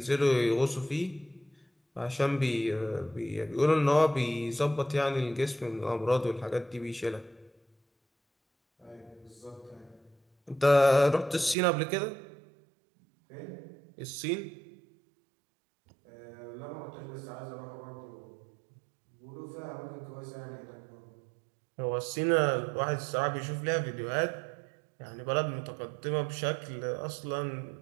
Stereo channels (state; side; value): drops out; left; at 11.6 s